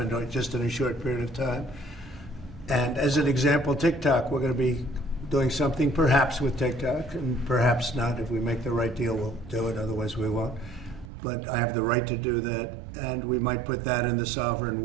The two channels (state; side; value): drops out; left; at 11.1 s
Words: just in a short period of time. And as an example, TikTok, we're going to be doing something perhaps with TikTok, and perhaps not. If we make the right deal, we'll do it, otherwise we won't. But I have the right to do that, and we might put that in the sovereign